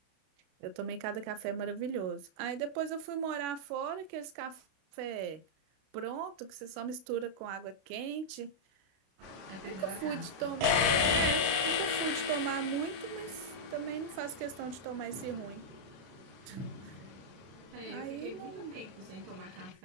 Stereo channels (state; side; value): late; left; 32 ms